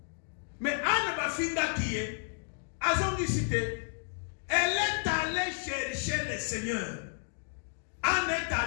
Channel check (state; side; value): silent; right; digital silence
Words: Mais Anne Bafinda qui est à son cité, elle est allée chercher le Seigneur. Anne est